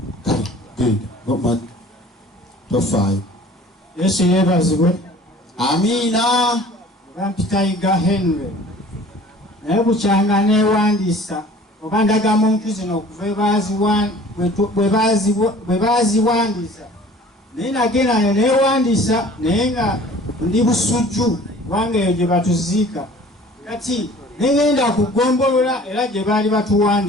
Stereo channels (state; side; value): normal; both; correlation 0.48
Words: kale genda tofaayo. Yesu yeebazibwe. Amiina. Bampitayiga Henry naye bukyanga neewandiisa oba ndagamuntu zino okuva bwe baaziwandiisa naye nagenda neewandiisa naye nga ndi busujju kubanga eyo gye batuziika kati negenda kugombolola era gye baali